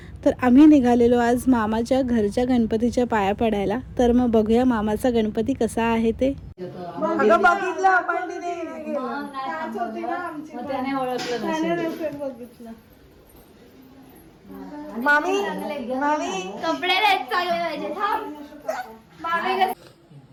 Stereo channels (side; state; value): both; identical; correlation 1.00